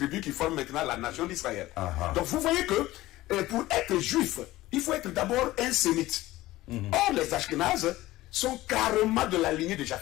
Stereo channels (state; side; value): quieter; right; 17.1 dB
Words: qui forment maintenant la nation d'Israël. Donc vous voyez que pour être juif, il faut être d'abord un sémite. Or les Ashkénazes, sont carrément de la lignée de